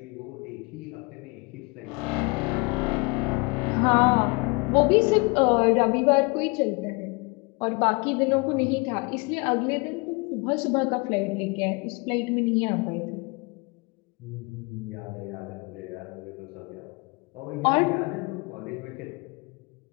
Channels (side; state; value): right; quieter; 28.8 dB